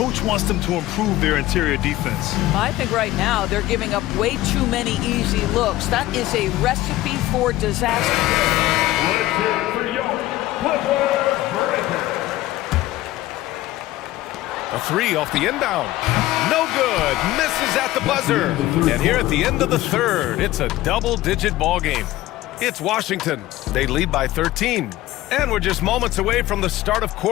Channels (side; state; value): right; quieter; 16.3 dB